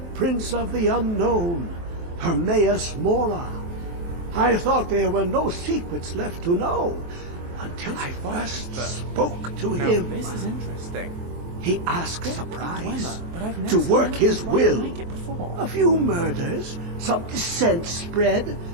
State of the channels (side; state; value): left; late; 23 ms